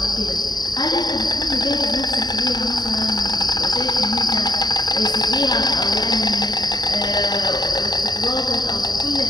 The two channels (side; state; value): right; late; 0.20 ms